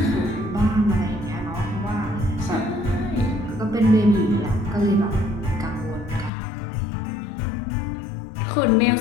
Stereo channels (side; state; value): right; drops out; at 6.3 s